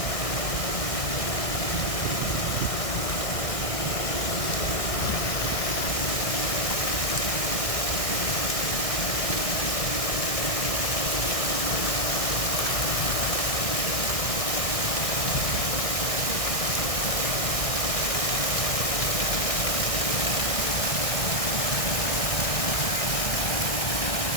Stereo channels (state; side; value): late; right; 1.6 ms